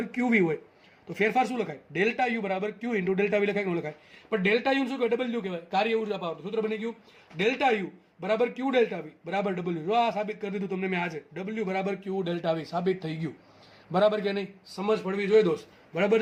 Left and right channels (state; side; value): identical; both; correlation 1.00